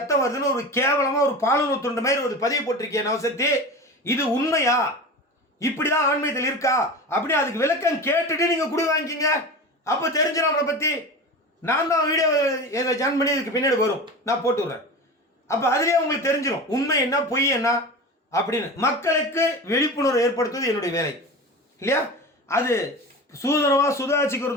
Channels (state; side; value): normal; both; correlation 0.30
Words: வருதுன்னு ஒரு கேவலமா ஒரு பாலுறவு துண்டு மாதிரி ஒரு பதிவு போட்டிருக்கேன் நவசக்தி. இது உண்மையா, இப்படிதான் ஆன்மீகத்தில் இருக்கா அப்படி அதுக்கு விளக்கம் கேட்டுட்டு நீங்க குடி வாங்கிக்கிங்க. அப்போ தெரிஞ்சிடும் அவனை பத்தி. நான் தான் வீடியோ ஜாயின் பண்ணி இதுக்கு பின்னாடி வரும், நான் போட்டு விடுறேன். அப்போ அதுலேயே உங்களுக்கு தெரிஞ்சிடும் உண்மை என்ன பொய் என்ன அப்படின்னு. மக்களுக்கு விழிப்புணர்வு ஏற்படுத்துவது என்னுடைய வேலை இல்லையா? அது